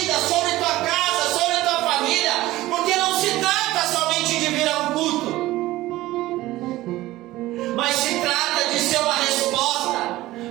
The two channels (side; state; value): left; quieter; 17.0 dB